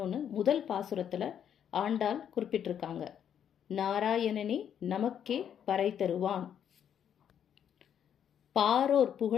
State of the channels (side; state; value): right; quieter; 9.0 dB